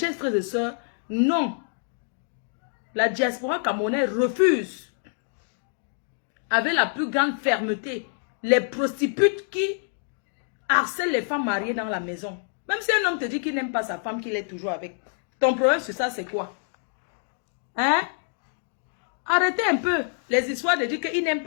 frères et sœurs, non. La diaspora camerounaise refuse avec la plus grande fermeté les prostituées qui harcèlent les femmes mariées dans la maison. Même si un homme te dit qu'il n'aime pas sa femme, qu'il est toujours avec. Ton problème sur ça, c'est quoi? Hein? Arrêtez un peu les histoires de dire qu'il n'aime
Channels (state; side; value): silent; right; digital silence